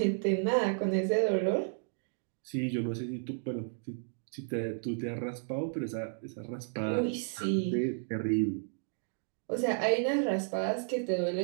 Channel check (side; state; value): left; silent; digital silence